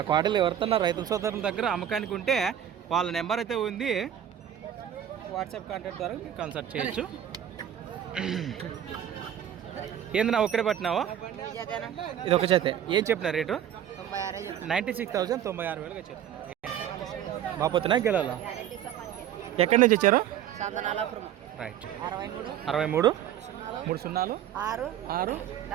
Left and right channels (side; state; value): left; quieter; 10.3 dB